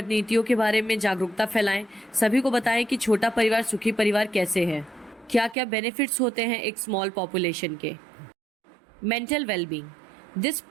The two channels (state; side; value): drops out; left; at 5.6 s